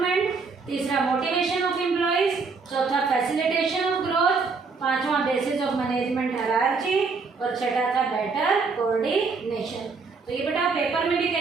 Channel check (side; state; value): left; quieter; 4.6 dB